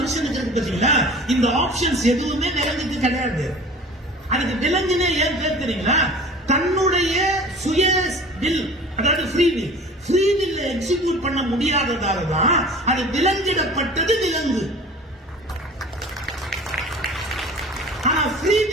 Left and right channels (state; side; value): normal; both; correlation 0.42